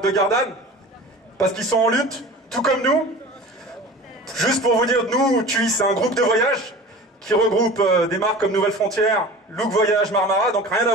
de Gardanne, parce qu'ils sont en lutte, tout comme nous. Juste pour vous dire, nous, TUI, c'est un groupe de voyage qui regroupe des marques comme Nouvelles Frontières, Look Voyage, Marmara, donc rien à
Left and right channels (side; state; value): both; normal; correlation 0.38